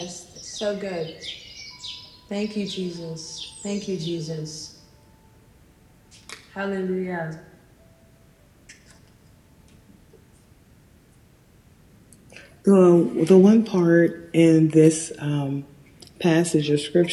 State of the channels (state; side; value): identical; both; correlation 1.00